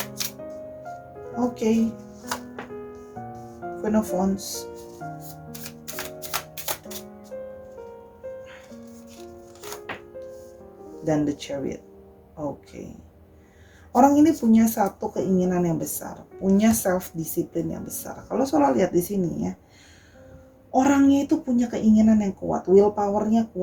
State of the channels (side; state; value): both; identical; correlation 1.00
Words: oke, Queen of Wands, dan the Chariot. Oke. Orang ini punya satu keinginan yang besar, punya self discipline yang besar. Kalau Sora lihat di sini ya, orangnya itu punya keinginan yang kuat, willpower-nya